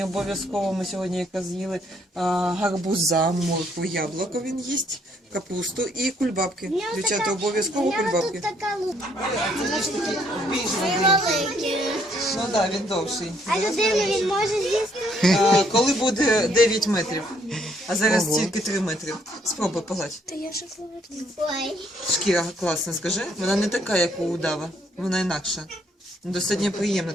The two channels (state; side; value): normal; both; correlation 0.68